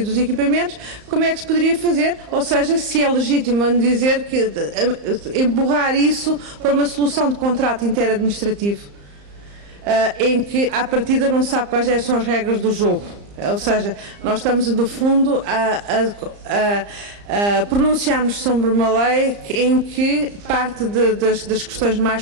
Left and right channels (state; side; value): late; left; 34 ms